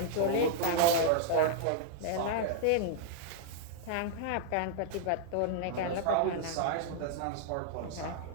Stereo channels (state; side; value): different; both; correlation -0.01